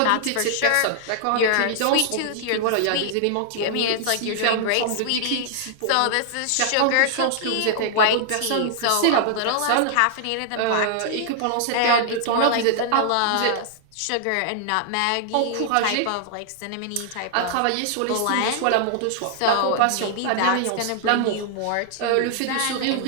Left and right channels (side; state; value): both; different; correlation -0.01